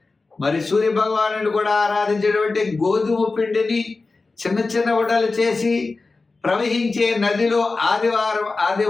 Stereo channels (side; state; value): right; quieter; 3.8 dB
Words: మరి సూర్య భగవాను కూడా ఆరాధించేటువంటి గోధుమ పిండిని చిన్న చిన్న ఉండలు చేసి ప్రవహించే నదిలో